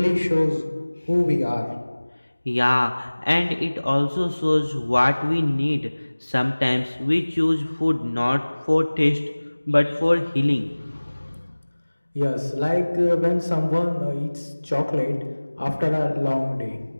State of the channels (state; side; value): inverted; both; correlation -1.00